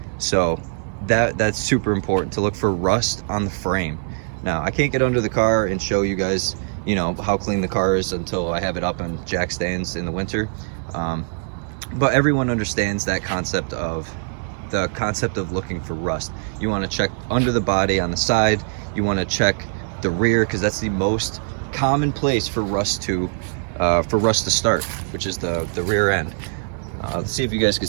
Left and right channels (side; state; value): left; silent; 64 dB below the other